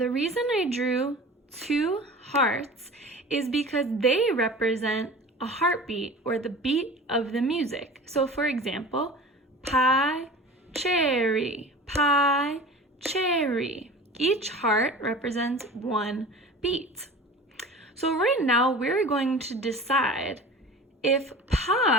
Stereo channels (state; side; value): normal; both; correlation 0.38